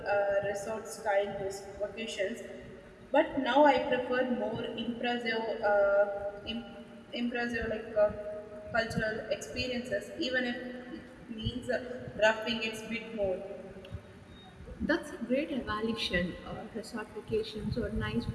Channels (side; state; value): both; identical; correlation 1.00